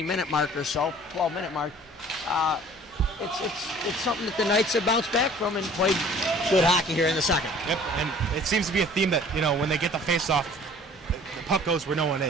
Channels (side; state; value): both; normal; correlation 0.51